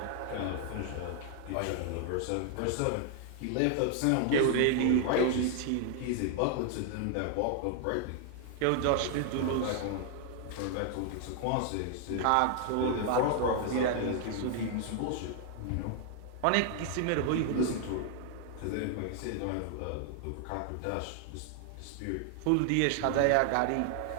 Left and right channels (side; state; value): both; different; correlation 0.00